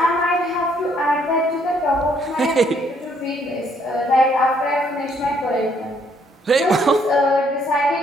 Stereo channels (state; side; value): normal; both; correlation 0.68